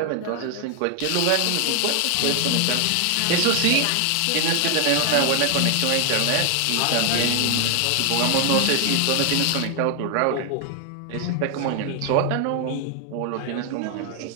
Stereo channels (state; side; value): different; both; correlation 0.00